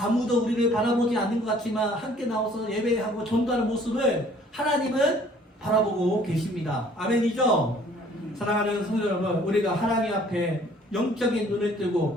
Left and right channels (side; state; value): both; normal; correlation 0.56